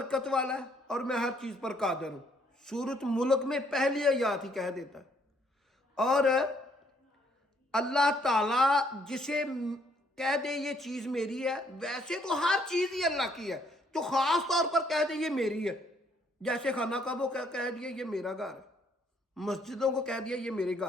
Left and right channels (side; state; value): both; normal; correlation 0.67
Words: والا ہے اور میں ہر چیز پر قادر ہوں، سورۃ ملک میں پہلی آیات ہی کہہ دیتا ہے۔ اور اللہ تعالیٰ جسے کہہ دے یہ چیز میری ہے، ویسے تو ہر چیز ہی اللہ کی ہے، جو خاص طور پر کہہ دے یہ میری ہے، جیسے خانہ کعبہ کو کہہ دیا یہ میرا گھر ہے، مسجدوں کو کہہ دیا یہ میرے